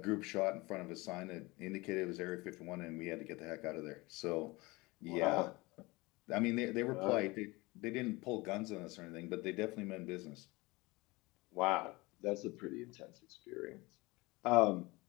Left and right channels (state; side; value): quieter; right; 23.1 dB